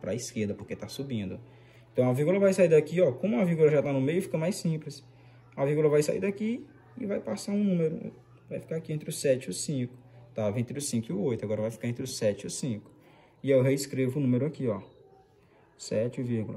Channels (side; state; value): both; identical; correlation 1.00